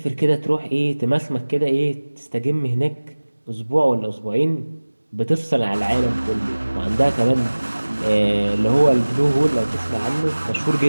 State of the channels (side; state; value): both; inverted; correlation -1.00